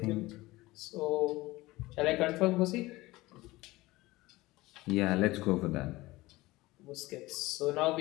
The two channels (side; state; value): right; quieter; 19.7 dB